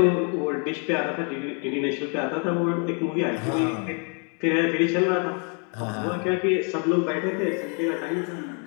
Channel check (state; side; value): quieter; right; 38.3 dB